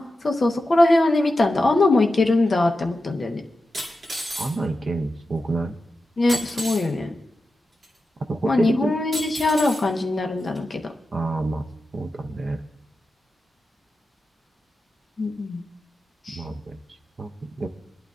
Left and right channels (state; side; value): normal; both; correlation 0.91